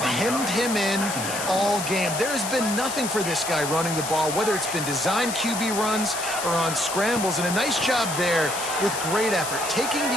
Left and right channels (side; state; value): left; noise; hiss, 6 dB below the sound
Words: him in all game. There has been nothing for this guy running the ball, whether it's been designed QB runs or on scrambles. And a nice job there with great effort. Taking